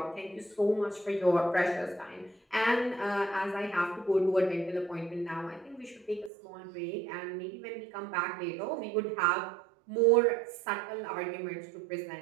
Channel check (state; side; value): drops out; left; at 6.3 s